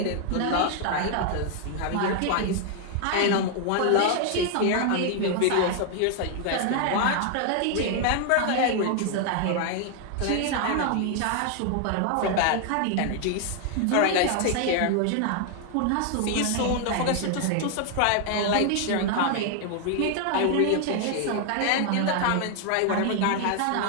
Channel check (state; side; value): different; both; correlation 0.00